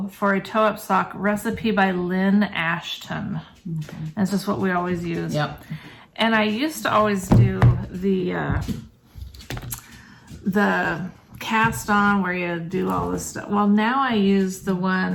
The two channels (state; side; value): identical; both; correlation 1.00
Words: for a toe-up sock recipe by Lynn Ashton. Okay. That's just what we always use. Yep. And I used to always do the cast on where you do all this stuff. Well, now I use the